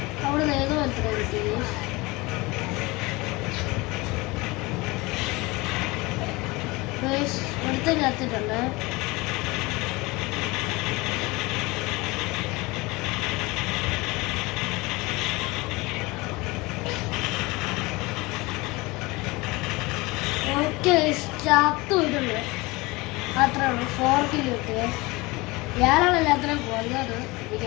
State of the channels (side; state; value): right; quieter; 23.3 dB